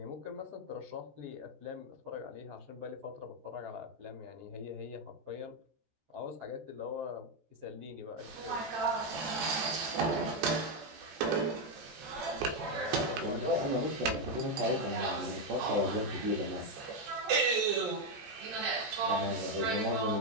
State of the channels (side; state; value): left; late; 14 ms